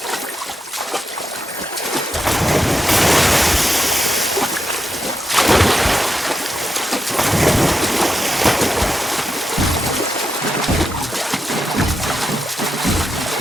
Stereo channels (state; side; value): normal; both; correlation 0.86